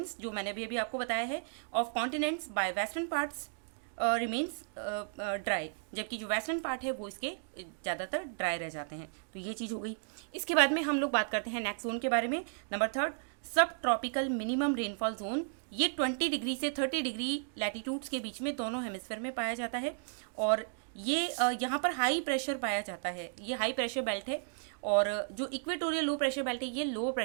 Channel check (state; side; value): silent; left; digital silence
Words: जो मैंने भी अभी आपको बताया है, of continents bye western parts remains dry, जबकि जो वेस्टर्न पार्ट है वो इसके ज़्यादातर ड्राई रह जाते हैं। तो ये चीज़ हो गई। इसके बाद में हम लोग बात करते हैं नेक्स्ट जोन के बारे में, नंबर 3, सब ट्रॉपिकल मिनिमम रेनफॉल जोन। ये 20 डिग्री से 30 डिग्री लैटिट्यूड्स के बीच में दोनों हेमिस्फीयर में पाया जाता है। और ये यहाँ पर हाई प्रेशर पाया जाता है, ये हाई प्रेशर बेल्ट है। और जो इक्वेटोरियल लो प्रेशर बेल्ट है ये लो